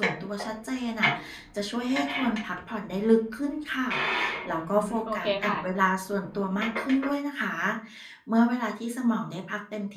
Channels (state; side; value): identical; both; correlation 1.00